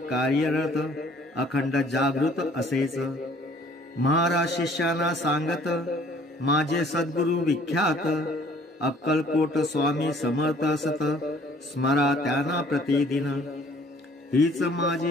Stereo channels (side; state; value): both; normal; correlation 0.57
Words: कार्यरत, अखंड जागृत असेच. महाराज शिष्यांना सांगत, माझे सद्गुरु विख्यात. अक्कलकोट स्वामी समर्थ असत, स्मरा त्यांना प्रतिदिन. हीच